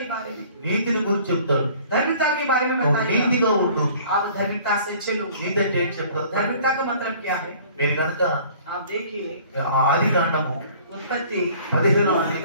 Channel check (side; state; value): both; inverted; correlation -0.52